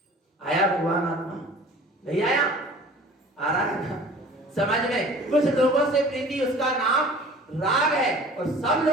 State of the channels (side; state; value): both; normal; correlation 0.46